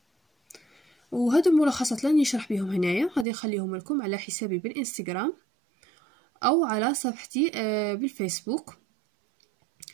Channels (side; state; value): left; drops out; at 3.2 s